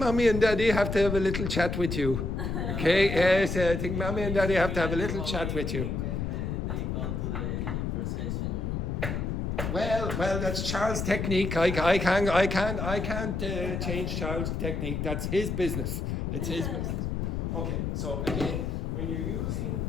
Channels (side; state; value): left; noise; rumble, 2 dB below the sound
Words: and Daddy have to have a little chat with you. Okay, yes, I think Mommy and Daddy have to have a little chat with you. When they come to the procession, you know. Well, that's Charles' technique. I can't change Charles' technique. That's his business. It's his business. Okay, so again, when you're using